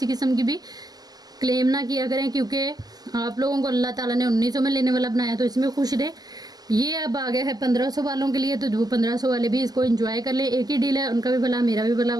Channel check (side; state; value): left; late; 0.19 ms